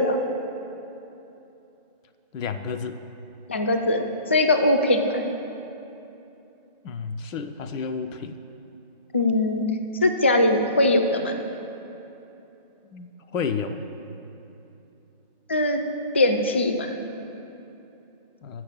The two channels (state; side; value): inverted; both; correlation -0.46